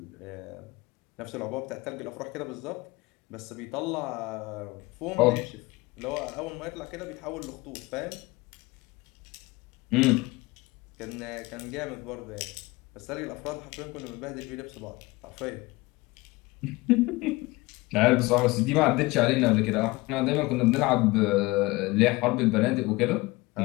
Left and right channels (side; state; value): right; quieter; 22.2 dB